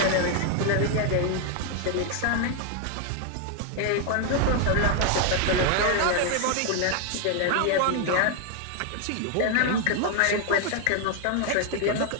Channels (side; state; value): both; different; correlation 0.00